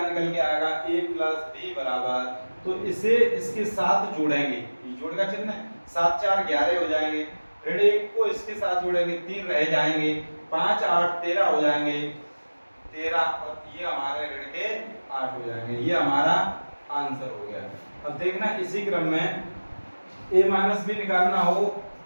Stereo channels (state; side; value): inverted; both; correlation -1.00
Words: निकल के आएगा? a प्लस b बराबर, तो इसे इसके साथ जोड़ेंगे, ये जोड़ का चिन्ह है, 7 4 11 हो जाएंगे, ऋण 1 को इसके साथ जोड़ेंगे, 3 रह जाएंगे, 5 8 13 हो जाएंगे, 13, और ये हमारे ऋण के 8 हो जाएंगे। ये हमारा आंसर हो गया। अब देखना इसी क्रम में a माइनस b निकालना हो